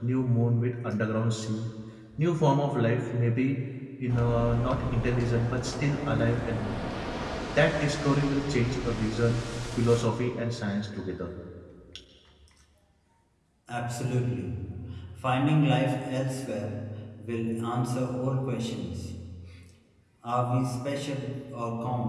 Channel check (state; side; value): identical; both; correlation 1.00